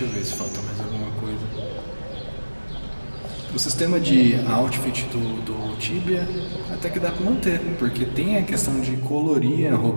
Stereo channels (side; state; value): both; inverted; correlation -1.00